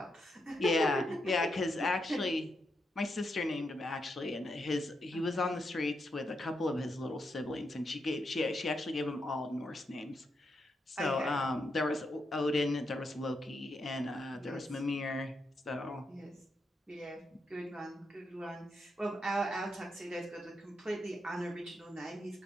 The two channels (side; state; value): both; normal; correlation 0.82